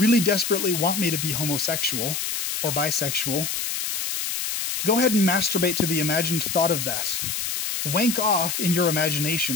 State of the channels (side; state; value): left; noise; hiss, 3 dB below the sound